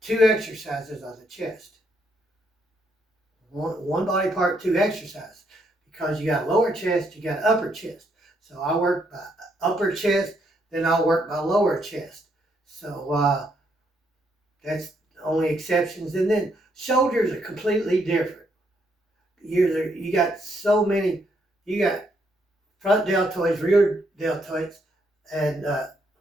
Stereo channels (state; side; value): normal; both; correlation 0.74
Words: 2 exercises on the chest. One body part, 2 exercises. Because you got lower chest, you got upper chest. So I work my upper chest, then I'll work my lower chest. So that's the only exceptions. And then shoulders are completely different. You got so many, you got front deltoids, rear deltoids, and